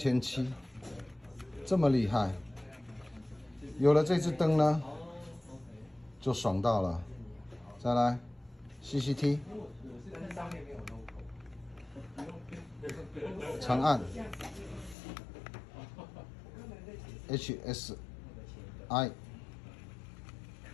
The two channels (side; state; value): right; drops out; at 15.0 s